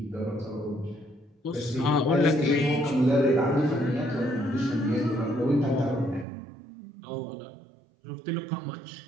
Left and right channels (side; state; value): left; drops out; at 6.2 s